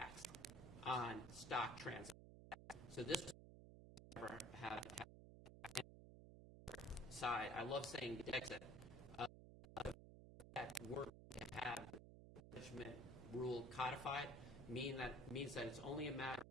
on stock transactions. So this never have a tax. Side, I love saying Brexit. That we're to have the management rule codified means that it's only a matter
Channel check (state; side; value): noise; right; hum, 14 dB below the sound